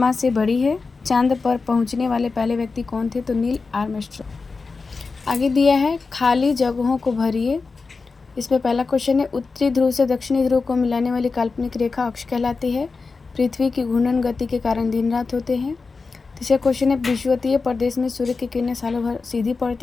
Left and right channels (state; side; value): quieter; right; 4.3 dB